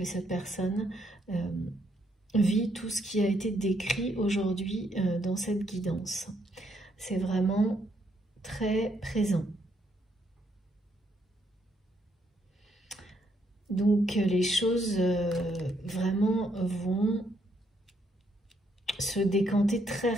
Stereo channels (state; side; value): normal; both; correlation 0.73